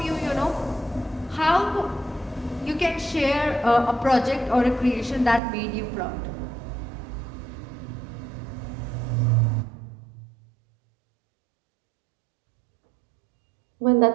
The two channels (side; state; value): left; drops out; at 5.4 s